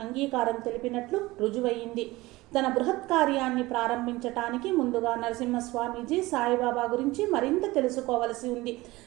అంగీకారం తెలిపినట్లు రుజువయింది. తన బృహత్ కార్యాన్ని ప్రారంభించటానికి ముందుగా నరసింహస్వామీజీ సాయిబాబా గురించి మరింత తెలుసుకోవలసి ఉంది.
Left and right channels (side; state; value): left; quieter; 19.9 dB